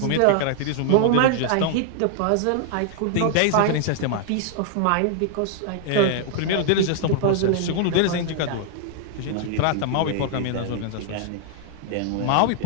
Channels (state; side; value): different; both; correlation 0.00